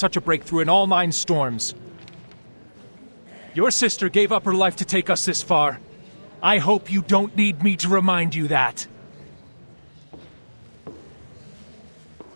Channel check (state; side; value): inverted; both; correlation -1.00